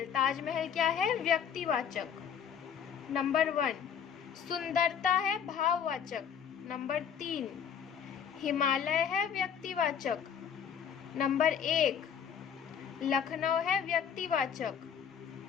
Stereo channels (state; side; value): quieter; right; 7.9 dB